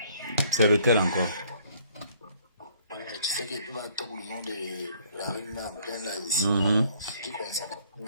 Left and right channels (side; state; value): both; inverted; correlation -0.60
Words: C'est lequel encore? Ouais, tu sais qu'il va attendre le nom de la rue en plein là ici. Qui concerne,